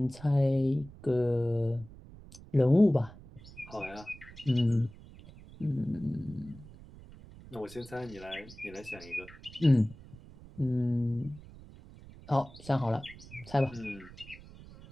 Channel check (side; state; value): right; noise; rumble, 19 dB below the sound